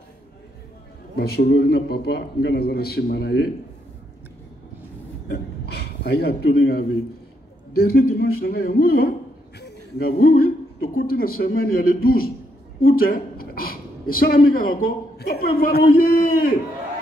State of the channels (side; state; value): both; normal; correlation 0.77